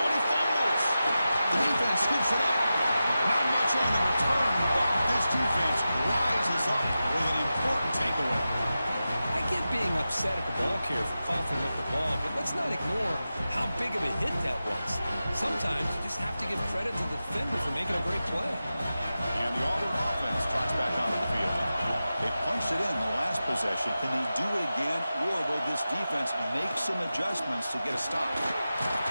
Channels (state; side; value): inverted; both; correlation -0.93